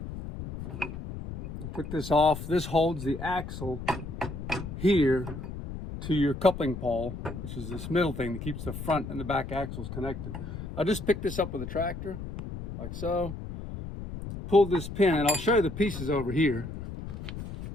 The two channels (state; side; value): noise; left; rumble, 8 dB below the sound